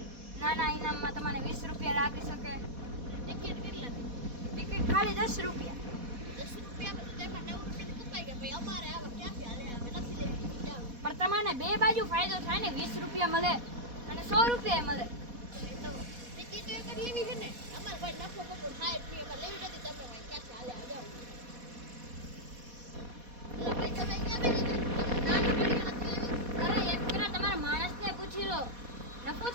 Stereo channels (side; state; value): left; late; 4.1 ms